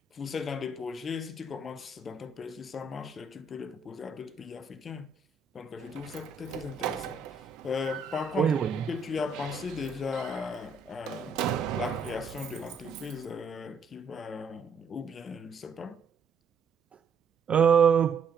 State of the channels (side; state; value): left; quieter; 4.0 dB